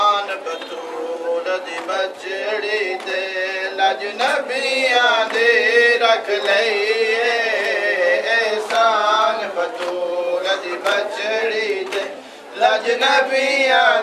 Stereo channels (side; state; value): both; identical; correlation 1.00